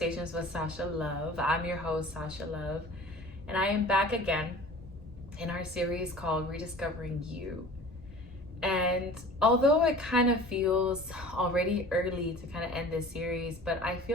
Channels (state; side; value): normal; both; correlation 0.43